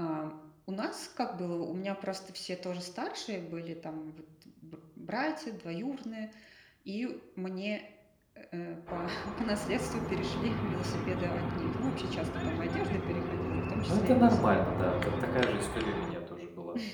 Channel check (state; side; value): identical; both; correlation 1.00